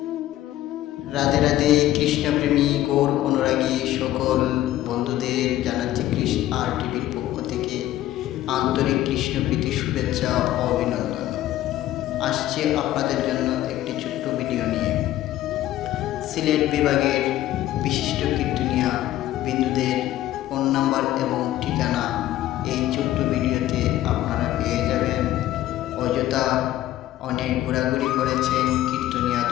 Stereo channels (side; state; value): right; quieter; 14.0 dB